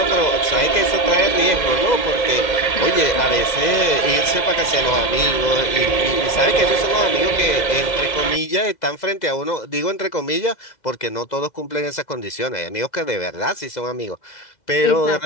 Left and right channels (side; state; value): right; late; 2.0 ms